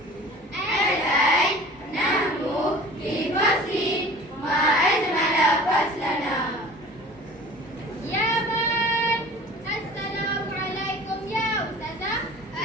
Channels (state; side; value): normal; both; correlation 0.44